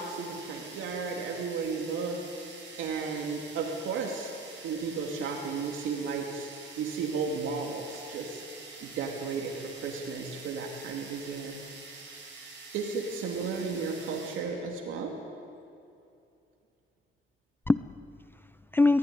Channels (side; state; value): both; normal; correlation 0.53